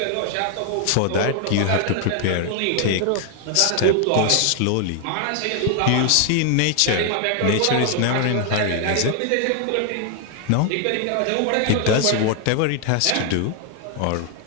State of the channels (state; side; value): different; both; correlation 0.00